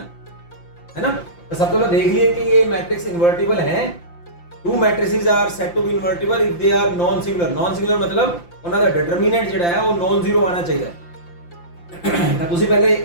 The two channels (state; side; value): late; right; 5.8 ms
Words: ਹੈ ਨਾ। ਤਾਂ ਸਭ ਤੋਂ ਪਹਿਲਾਂ ਦੇਖ ਲਈਏ ਕਿ ਇਹ ਮੈਟ੍ਰਿਕਸ ਇਨਵਰਟੀਬਲ ਹੈ। Two matrices are said to be invertible if they are non singular. Non singular ਮਤਲਬ ਉਹਨਾਂ ਦਾ ਡਿਟਰਮੀਨੈਂਟ ਜਿਹੜਾ ਹੈ ਉਹ ਨॉन ਜ਼ੀਰੋ ਆਣਾ ਚਾਹੀਦਾ ਹੈ। ਤਾਂ ਤੁਸੀਂ ਪਹਿਲੇ